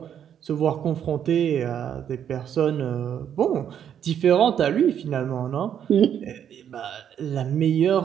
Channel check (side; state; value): left; quieter; 9.2 dB